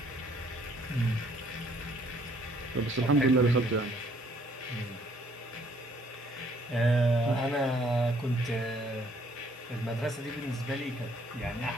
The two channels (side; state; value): both; normal; correlation 0.63